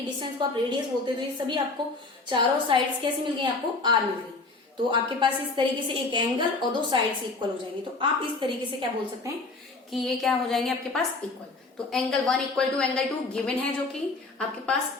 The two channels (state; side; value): quieter; right; 3.6 dB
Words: डिस्टेंस को आप रेडियस बोलते हैं, तो ये सभी आपको चारों साइड्स कैसे मिल गई, आपको आर मिल गई। तो आपके पास इस तरीके से एक एंगल और दो साइड से इक्वल हो जाएंगे, तो आप इस तरीके से क्या बोल सकते हैं कि ये क्या हो जाएंगे आपके पास, इक्वल। तो angle 1 equal to angle 2 given है जो कि आपके